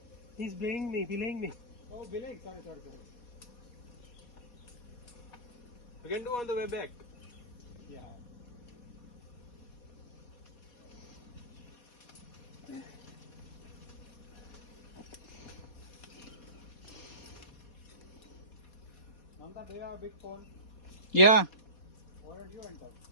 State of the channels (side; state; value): right; late; 4.2 ms